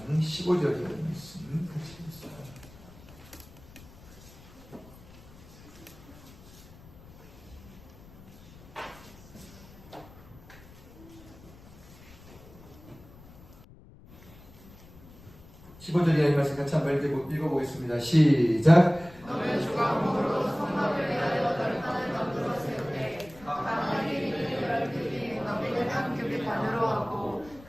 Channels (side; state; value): left; noise; rumble, 21 dB below the sound